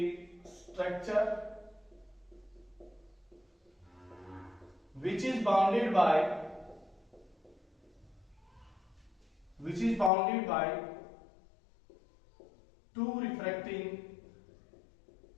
structure which is bounded by two refracting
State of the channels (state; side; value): drops out; right; at 10.1 s